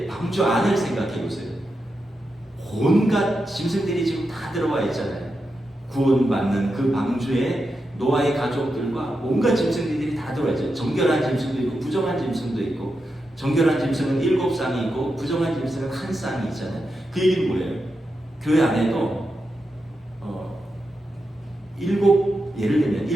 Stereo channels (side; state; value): both; normal; correlation 0.88